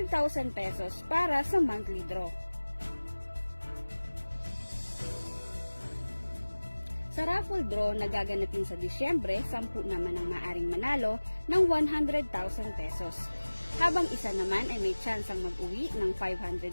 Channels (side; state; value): both; inverted; correlation -1.00